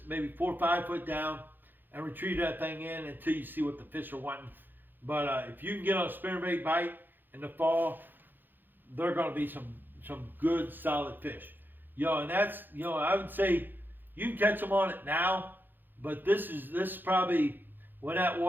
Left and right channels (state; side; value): late; left; 0.092 ms